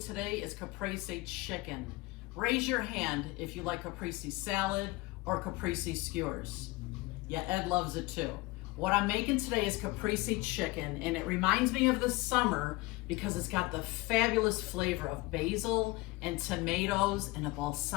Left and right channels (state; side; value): quieter; right; 22.0 dB